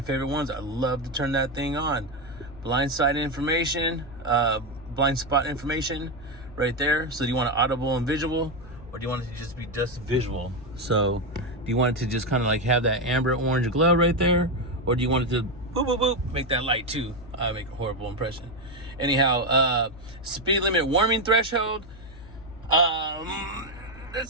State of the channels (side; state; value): left; noise; hum, 18 dB below the sound